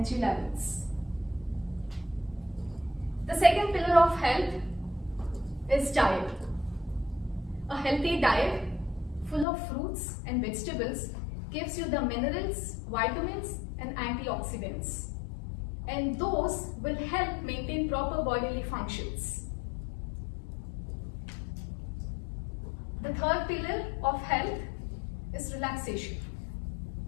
levels. The second pillar of health is diet. A healthy diet full of fruits and vegetables gives you the minerals, vitamins, and antioxidants. And those will help maintain proper bodily functions. The third pillar of health is relaxation.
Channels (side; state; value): right; drops out; at 9.5 s